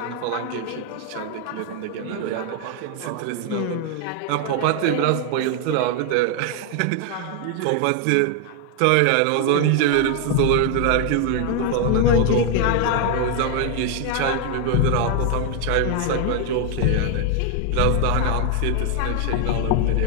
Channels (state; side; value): different; both; correlation 0.00